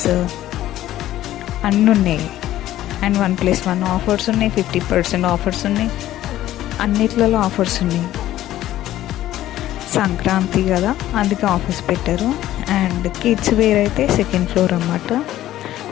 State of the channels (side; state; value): right; quieter; 13.8 dB